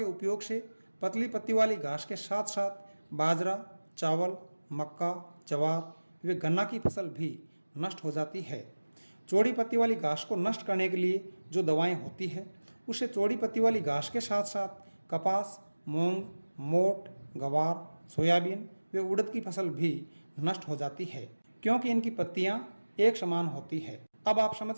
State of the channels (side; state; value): both; inverted; correlation -1.00